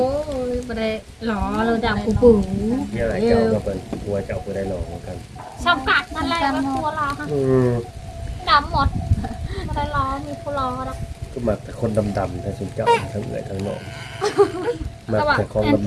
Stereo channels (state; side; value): identical; both; correlation 1.00